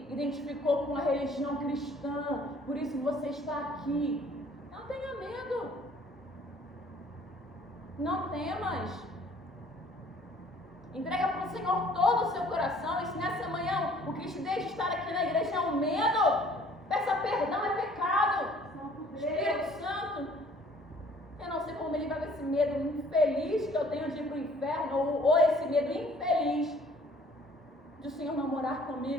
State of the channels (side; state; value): both; normal; correlation 0.55